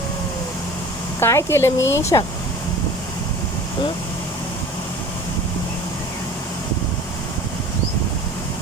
काय केलं मी शा? हं?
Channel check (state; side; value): normal; both; correlation 0.42